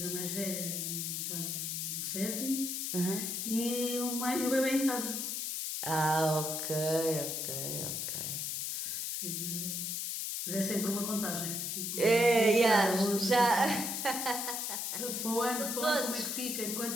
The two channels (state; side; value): noise; left; hiss, 2 dB below the sound